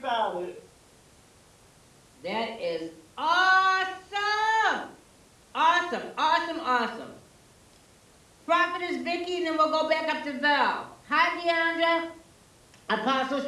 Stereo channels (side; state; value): both; identical; correlation 1.00